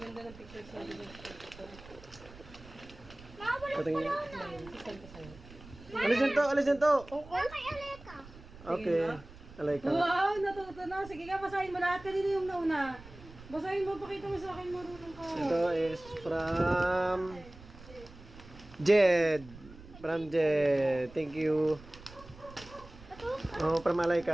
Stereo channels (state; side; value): noise; right; rumble, 19 dB below the sound